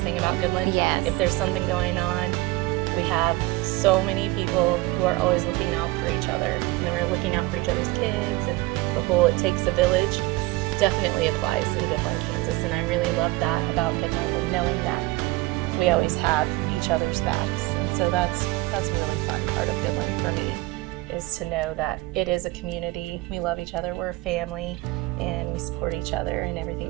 about Goodland. Yes. If there's something going on, we have so many people who are always looking out for each other, and then we're looking out for each other's kids, and the whole "it takes a village" definitely applies in Goodland, Kansas, and I really love that about Goodland, and knowing that we always have each other's backs. And so that's a really fun part of Goodland for me, is to know that it is a community. We love each other, we're a family, and we support each other in everything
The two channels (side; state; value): left; quieter; 20.2 dB